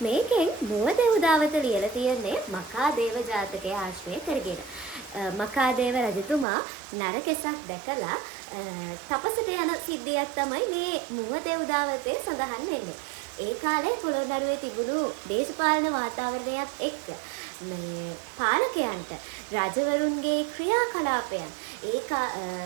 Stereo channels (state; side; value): drops out; left; at 6.5 s